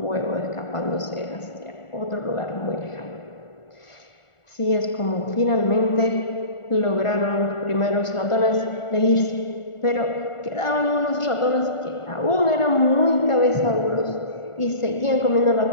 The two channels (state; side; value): late; right; 1.4 ms